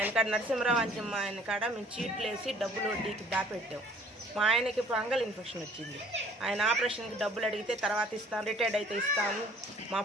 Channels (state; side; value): normal; both; correlation 0.55